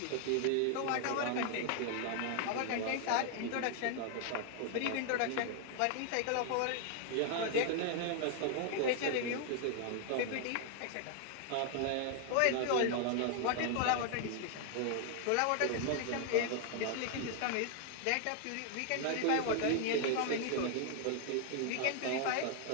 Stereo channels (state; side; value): different; both; correlation 0.00